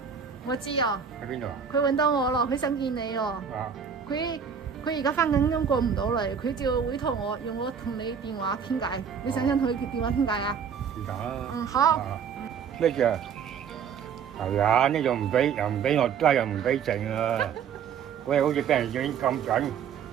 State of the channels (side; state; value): left; quieter; 7.1 dB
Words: 我知啊。喺邊度啊？佢揾到我咯，佢想見你哦。啊。佢而家翻緊工過唔到嚟，佢就委託我用我同你電話傾偈。你想唔想同佢電話傾偈啊？是但啦。嗯，好。咩事啊？係啊，呢度唔俾，又唔俾落街，又唔俾剩啊！喂，好似俾人影咁緊，